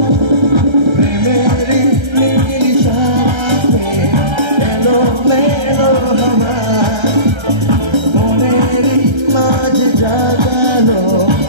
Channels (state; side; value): late; left; 1.3 ms